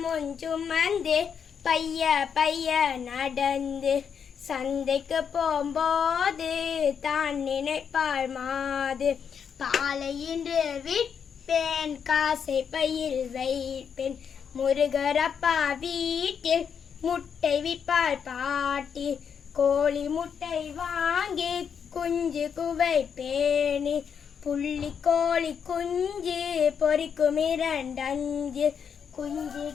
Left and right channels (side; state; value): right; quieter; 7.2 dB